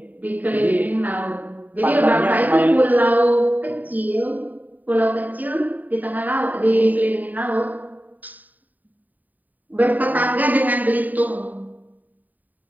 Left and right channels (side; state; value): left; late; 0.083 ms